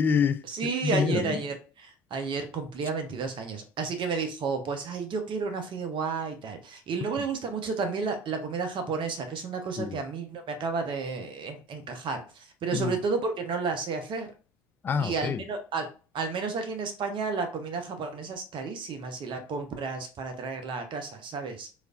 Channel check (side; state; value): both; normal; correlation 0.41